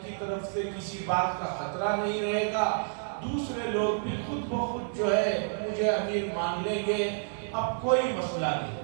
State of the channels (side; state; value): left; silent; 58 dB below the other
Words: کی طرف سے کسی بات کا خطرہ نہیں رہے گا، دوسرے لوگ بھی خود بخود جو ہے مجھے امیر مان لیں گے، اب کوئی مسئلہ